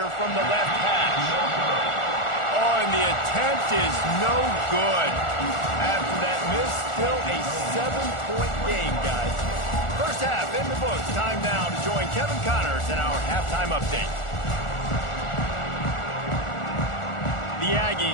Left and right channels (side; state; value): right; late; 1.4 ms